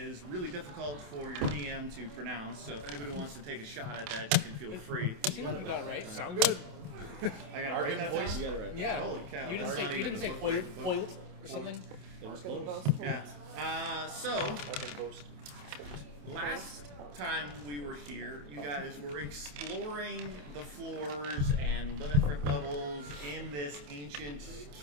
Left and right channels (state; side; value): late; left; 28 ms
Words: really difficult for your DM to pronounce. So if anybody wants to take a shot at that, you can feel free. You seem like you got it right. Sound good. I got it right that time? You got it right. Yeah. Holy cow. You that's didn't not say, you even didn't the say book, foiled, right? foiled or something? It was close. Yeah. So, last time we were here, you guys were exploring the floors and different levels in this ancient